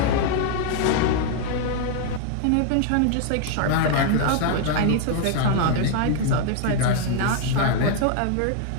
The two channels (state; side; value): different; both; correlation 0.00